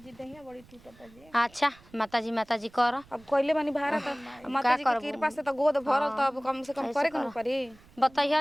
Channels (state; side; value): noise; right; rumble, 26 dB below the sound